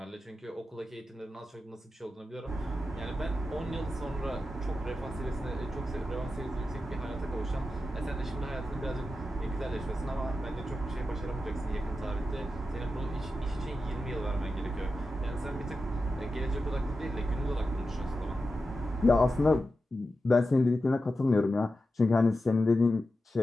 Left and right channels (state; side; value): normal; both; correlation 0.91